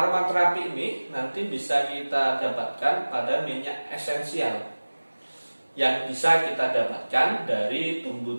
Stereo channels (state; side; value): inverted; both; correlation -1.00